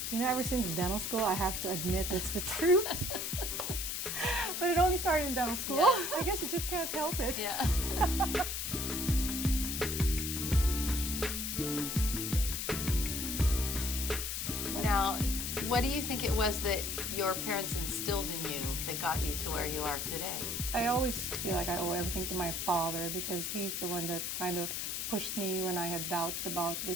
You know, ever since dental school, I have to admit it's the truth. But it only started in dental school. Yeah. I guess you just can't help it. Yeah. Now, what do you think it was that your parents instilled in you that got you to where you are today? I always feel like I owe everything to my father because he's the one that kind of pushed me when I had doubts about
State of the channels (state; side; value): noise; left; hiss, 2 dB below the sound